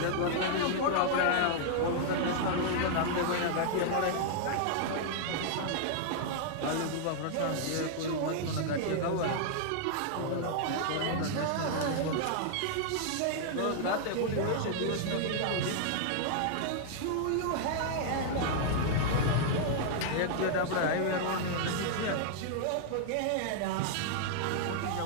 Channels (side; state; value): both; different; correlation -0.01